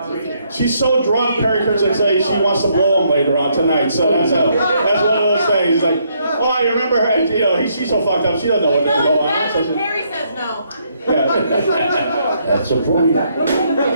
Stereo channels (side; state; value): both; inverted; correlation -0.73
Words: She's so drunk, Perry Kurtz would say she wants to blow him later on tonight. So that's one of those things. Like, oh, you remember her? You know, she's so fucked up. She doesn't know what to go on. Perry says no. Yeah. That's the point.